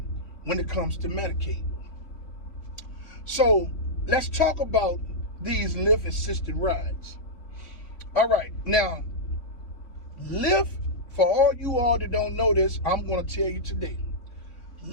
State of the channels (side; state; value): right; late; 3.5 ms